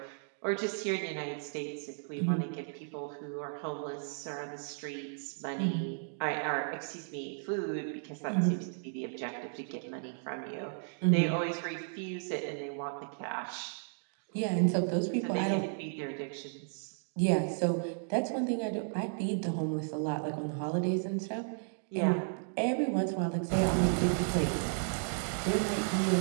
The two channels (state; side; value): silent; left; digital silence